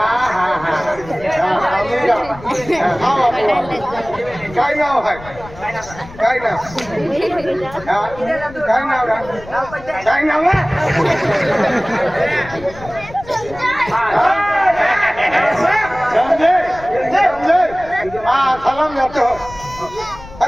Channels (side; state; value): left; noise; rumble, 17 dB below the sound